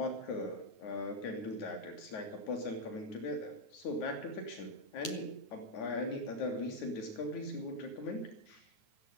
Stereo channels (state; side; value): late; right; 9.4 ms